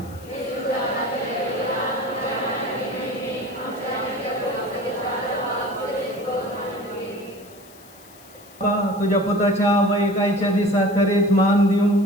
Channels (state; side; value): noise; left; hiss, 23 dB below the sound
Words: तुझ्या पुताच्या वैकायच्या दिसा खरेंच मान दिवं